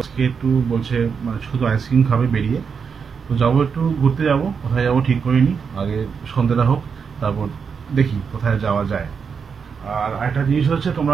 আজকে একটু বলছে মানে শুধু আইসক্রিম খাবে বেরিয়ে, তো যাবো একটু ঘুরতে, যাবো কোথায় যাবো ঠিক করিনি, আগে সন্ধ্যেটা হোক তারপর দেখি কোথায় যাওয়া যায়। আর একটা জিনিস হচ্ছে, তোমরা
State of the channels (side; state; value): left; quieter; 6.1 dB